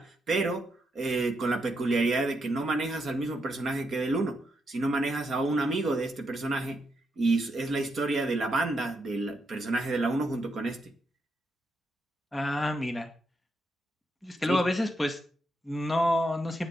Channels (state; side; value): normal; both; correlation 0.81